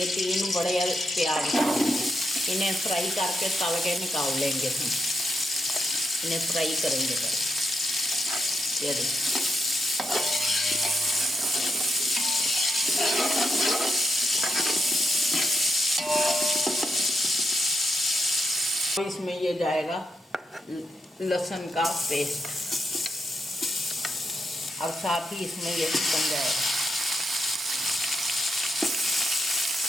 3 बड़े प्याज इन्हें फ्राई करके तल के निकाल लेंगे। हम इन्हें फ्राई करेंगे पहले। ये देखिए, इसमें ये जाएगा लहसुन का पेस्ट, और साथ ही इसमें ये चिकन जाएगा।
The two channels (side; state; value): both; normal; correlation 0.82